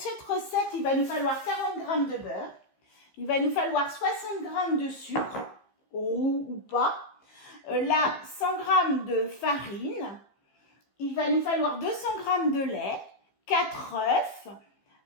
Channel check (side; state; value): right; late; 15 ms